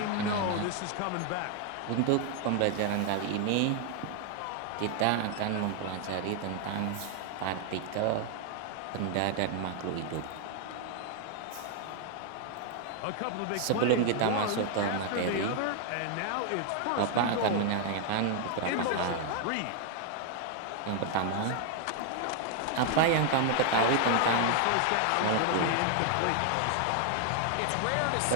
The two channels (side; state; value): both; different; correlation 0.00